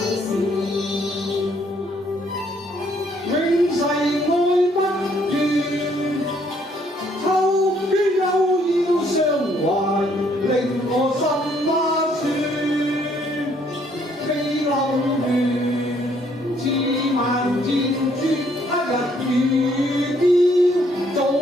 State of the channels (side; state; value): both; normal; correlation 0.67